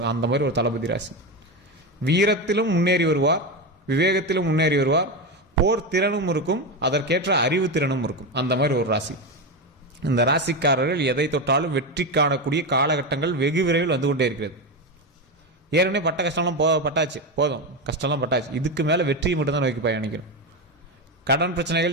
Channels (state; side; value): normal; both; correlation 0.15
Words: அந்த மாதிரி ஒரு தளபதி ராசி. வீரத்திலும் முன்னேறி வருவார், விவேகத்திலும் முன்னேறி வருவார், போர் திறனும் இருக்கும், அதற்கேற்ற அறிவு திறனும் இருக்கும். அந்த மாதிரி ஒரு ராசி. இந்த ராசிக்காரர்கள் எதை தொட்டாலும் வெற்றி காணக்கூடிய காலகட்டங்கள் வெகு விரைவில் வந்து கொண்டே இருக்கிறது. ஏற்கனவே பட்ட கஷ்டம்லாம் பட்டாச்சு, போதும், கஷ்டம்லாம் பட்டாச்சு. இதுக்கு மேலே வெற்றியை மட்டும்தான் நோக்கி பயணிக்கணும். கடன்